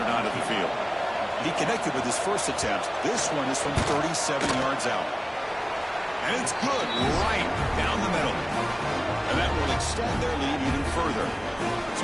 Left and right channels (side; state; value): both; identical; correlation 1.00